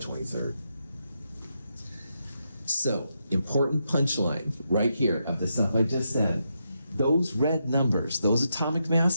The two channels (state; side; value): inverted; both; correlation -0.83